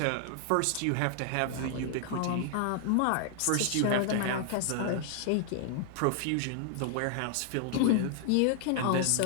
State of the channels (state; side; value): different; both; correlation 0.00